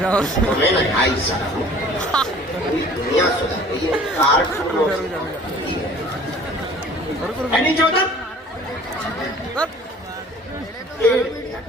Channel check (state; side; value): normal; both; correlation 0.49